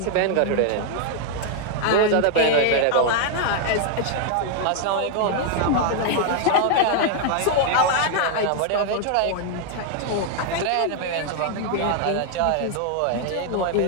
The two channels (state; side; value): different; both; correlation 0.00